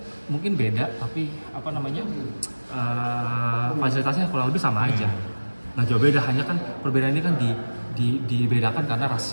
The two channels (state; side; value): inverted; both; correlation -1.00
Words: mungkin beda, tapi fasilitasnya kurang lebih sama aja. Nah jauh beda, hanya kan perbedaan ini kan dibedakan karena